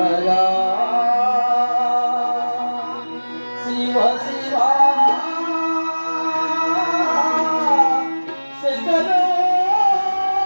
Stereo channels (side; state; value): both; inverted; correlation -1.00